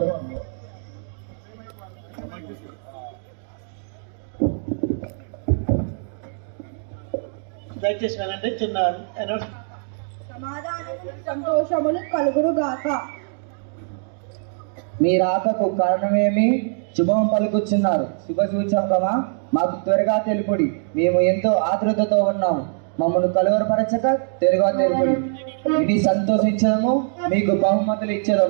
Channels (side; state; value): left; silent; 64 dB below the other